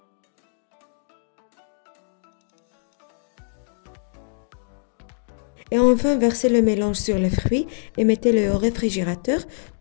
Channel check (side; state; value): right; silent; digital silence